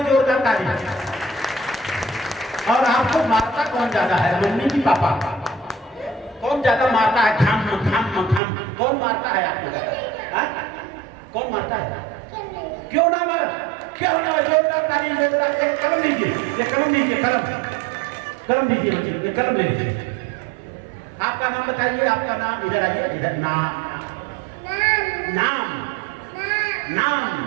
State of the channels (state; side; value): drops out; left; at 8.4 s